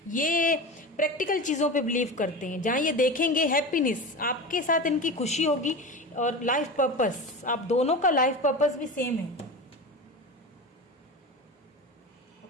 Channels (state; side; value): normal; both; correlation 0.27